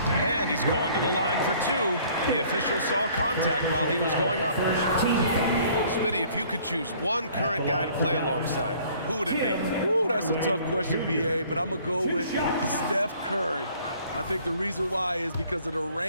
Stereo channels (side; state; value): both; inverted; correlation -0.56